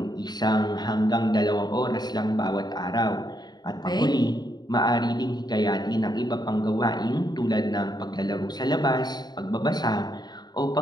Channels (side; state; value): right; late; 0.20 ms